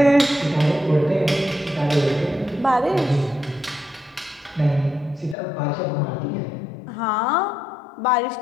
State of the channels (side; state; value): right; drops out; at 5.4 s